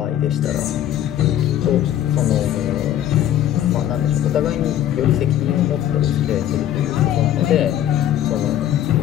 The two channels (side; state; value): right; quieter; 11.5 dB